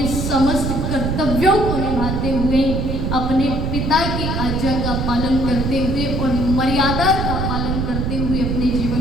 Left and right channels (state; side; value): noise; right; rumble, 1 dB below the sound